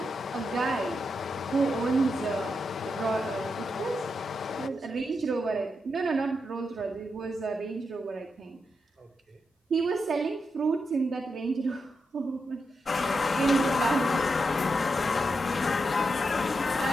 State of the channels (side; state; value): both; normal; correlation 0.85